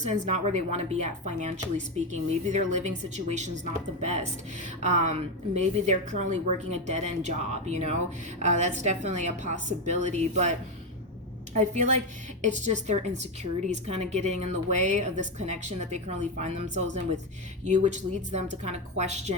not where they want to be at financially speaking. Maybe their living situation's not the best. Maybe they're currently working a dead-end job, you know? That's definitely a possibility, but I feel like it's just their insecurities kind of getting in the way of this connection that they currently find themselves in with you, which leads them to kind of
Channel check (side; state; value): both; normal; correlation 0.10